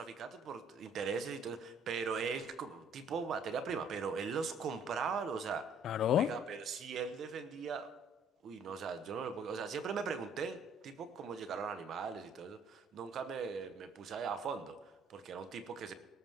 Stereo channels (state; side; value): normal; both; correlation 0.59